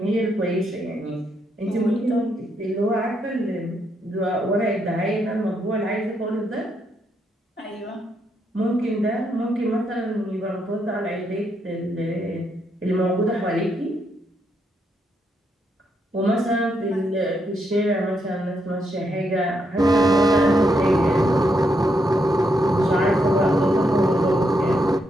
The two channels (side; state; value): both; normal; correlation 0.78